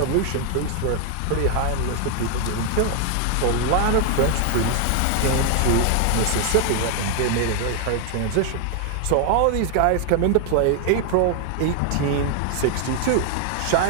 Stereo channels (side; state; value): both; different; correlation 0.00